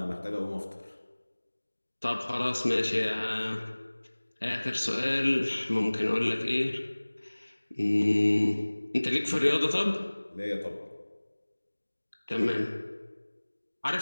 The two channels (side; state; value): both; inverted; correlation -1.00